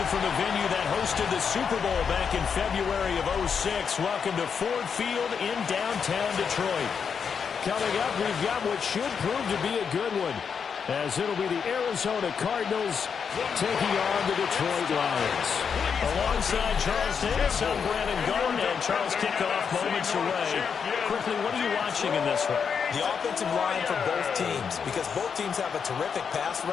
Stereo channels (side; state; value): right; quieter; 6.5 dB